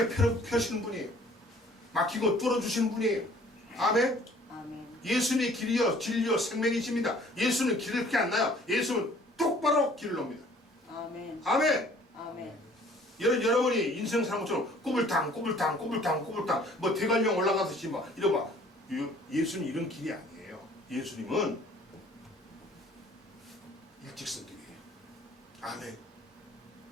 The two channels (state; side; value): normal; both; correlation 0.54